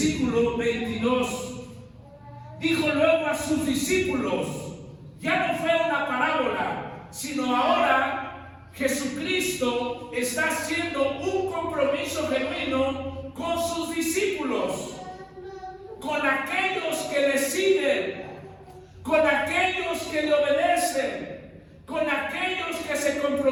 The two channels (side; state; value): both; identical; correlation 1.00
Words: 22, dijo luego a sus discípulos, ya no fue una parábola, sino ahora Jesucristo está haciendo un compromiso genuino con sus discípulos, con aquellos que le siguen, con aquellos que le obedecen, con aquellos que se